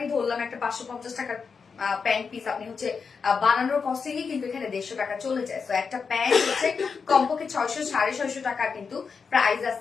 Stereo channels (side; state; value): right; quieter; 5.5 dB